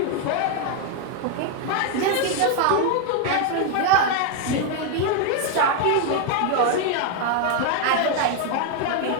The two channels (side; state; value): both; different; correlation 0.01